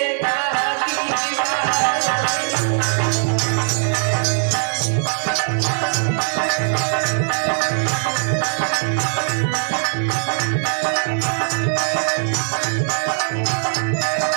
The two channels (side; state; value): left; silent; digital silence